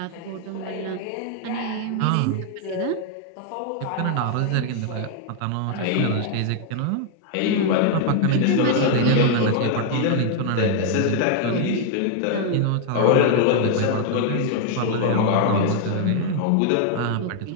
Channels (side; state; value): both; different; correlation 0.00